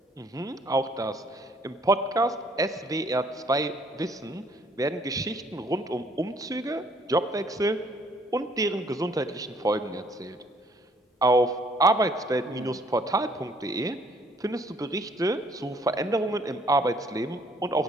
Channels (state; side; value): normal; both; correlation 0.62